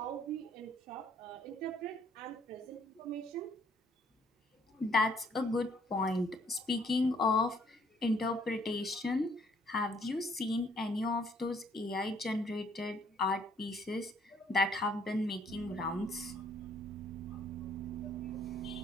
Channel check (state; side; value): normal; both; correlation 0.64